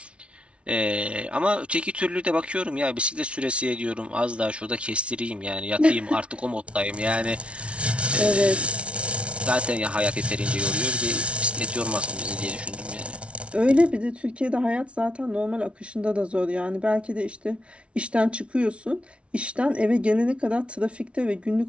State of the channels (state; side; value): late; left; 0.060 ms